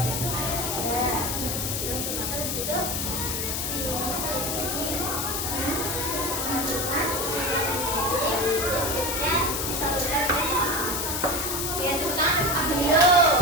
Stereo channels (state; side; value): noise; left; hiss, 1 dB below the sound